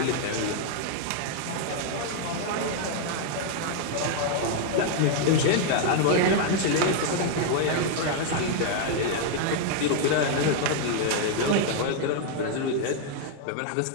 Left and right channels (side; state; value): both; different; correlation 0.00